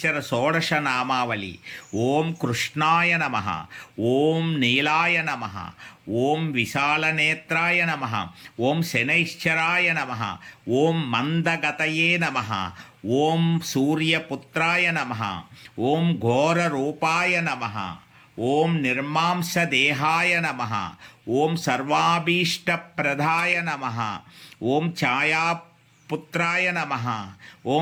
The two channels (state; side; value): identical; both; correlation 1.00